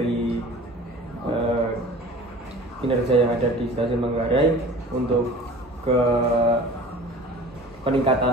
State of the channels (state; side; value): normal; both; correlation 0.42